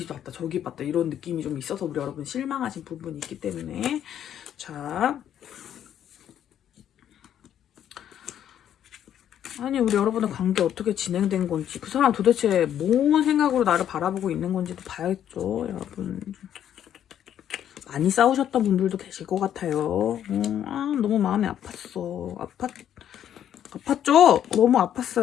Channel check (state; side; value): quieter; right; 10.1 dB